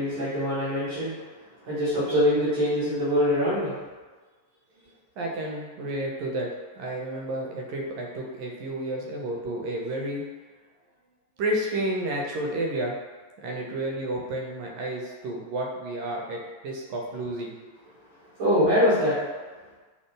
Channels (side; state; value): left; late; 11 ms